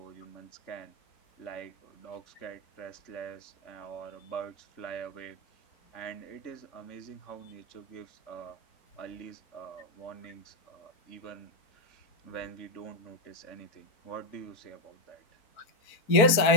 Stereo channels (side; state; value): right; late; 4.4 ms